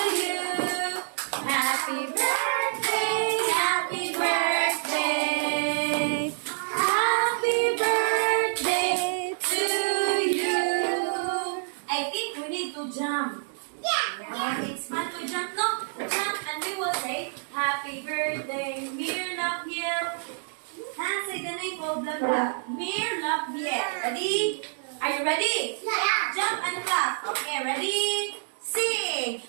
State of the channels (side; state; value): left; silent; digital silence